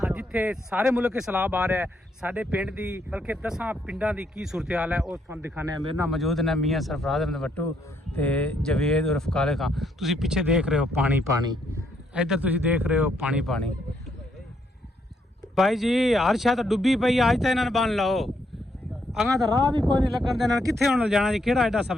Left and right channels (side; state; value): both; normal; correlation 0.74